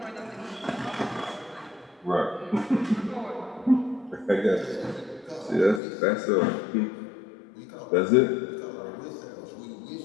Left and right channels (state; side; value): drops out; right; at 5.8 s